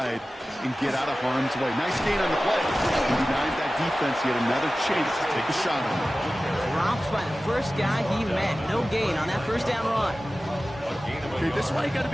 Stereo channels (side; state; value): both; normal; correlation 0.96